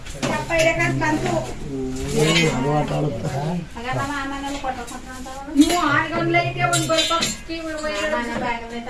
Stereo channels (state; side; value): identical; both; correlation 1.00